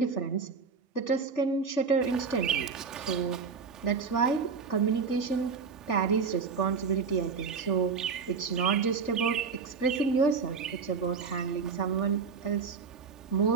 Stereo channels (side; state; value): left; quieter; 5.4 dB